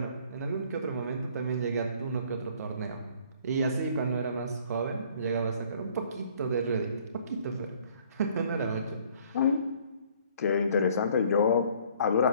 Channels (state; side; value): inverted; both; correlation -0.58